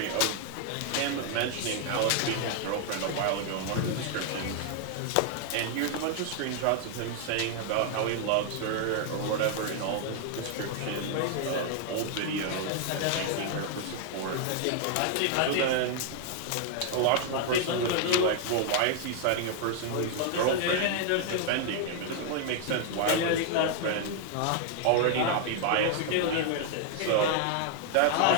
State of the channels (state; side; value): different; both; correlation 0.00